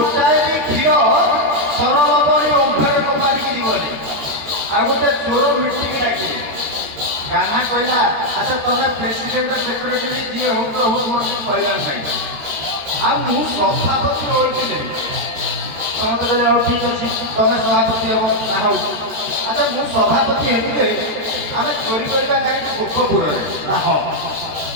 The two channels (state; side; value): late; left; 13 ms